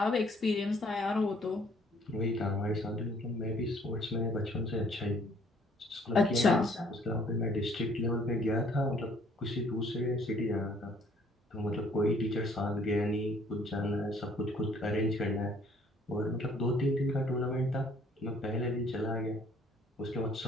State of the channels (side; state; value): both; normal; correlation 0.61